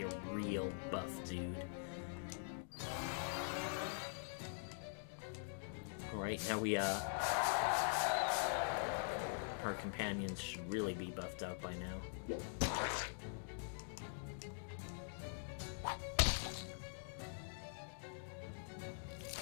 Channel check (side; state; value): right; silent; digital silence